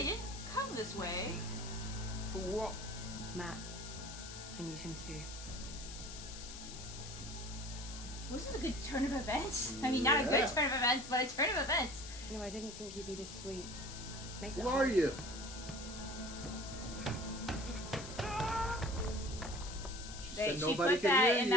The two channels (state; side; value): noise; left; hiss, 11 dB below the sound